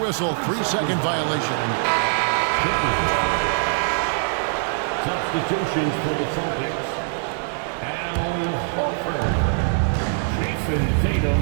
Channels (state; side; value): silent; left; 60 dB below the other